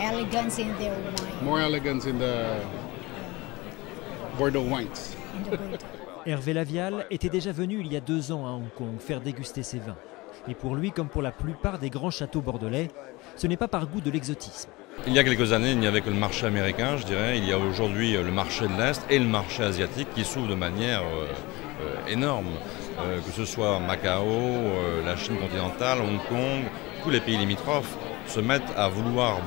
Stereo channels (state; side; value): quieter; right; 22.3 dB